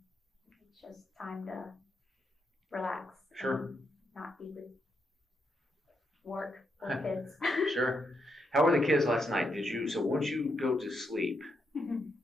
It's just time to relax. Sure. And not be with work or kids. Sure. How were the kids last night? So once you go to sleep,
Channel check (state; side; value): normal; both; correlation 0.81